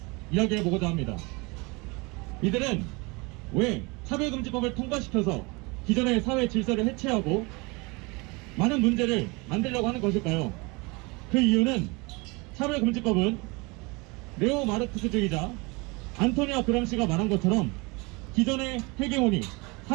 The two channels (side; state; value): left; quieter; 26.9 dB